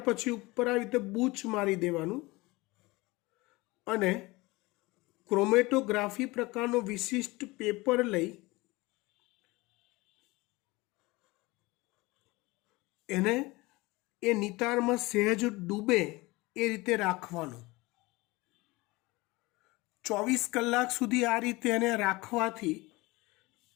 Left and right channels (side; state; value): right; quieter; 22.2 dB